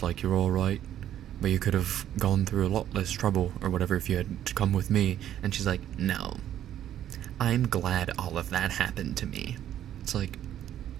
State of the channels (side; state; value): left; quieter; 11.2 dB